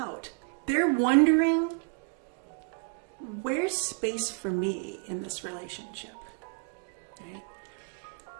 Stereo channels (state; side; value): quieter; left; 36.9 dB